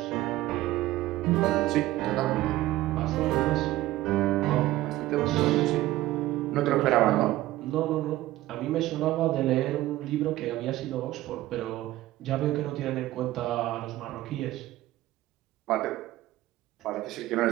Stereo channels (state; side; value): quieter; left; 16.1 dB